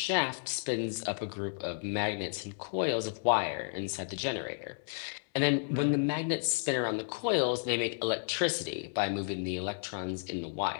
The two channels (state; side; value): silent; right; digital silence